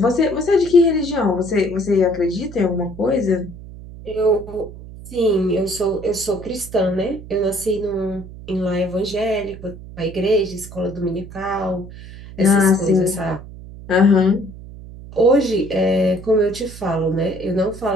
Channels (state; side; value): noise; right; hum, 15 dB below the sound